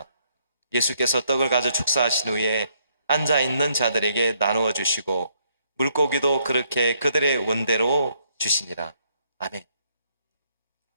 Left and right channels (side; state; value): both; inverted; correlation -0.72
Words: 예수께서 떡을 가져 축사하신 후에 앉아있는 자들에게 나누어 주시고 물고기도 그렇게 그들의 원대로 주시니라. 아멘.